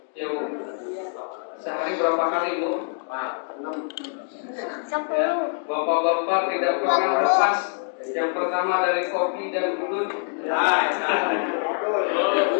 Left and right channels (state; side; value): silent; right; digital silence